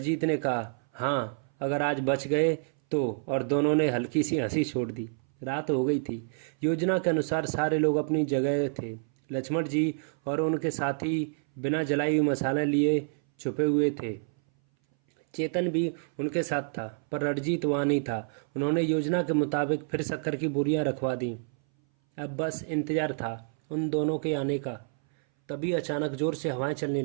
ने कहा, हाँ अगर आज बच गए तो। और दोनों ने हल्की सी हंसी छोड़ दी। रात हो गई थी। योजना के अनुसार सारे लोग अपनी जगह थे। लक्ष्मण जी और उनके साथी बिना जलाई हुई मसाला लिए छुपे हुए थे। चेतन भी उनके साथ था, पर रणजीत वहाँ नहीं था। उन्होंने योजना के मुताबिक फिर शक्कर की बोरियां रखवा दी। अब बस इंतजार था उन दोनों के आने का। तभी अचानक जोर से हवाएं चलने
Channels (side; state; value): left; silent; 59 dB below the other